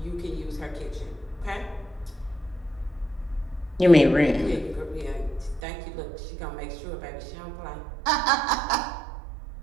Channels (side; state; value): left; drops out; at 5.6 s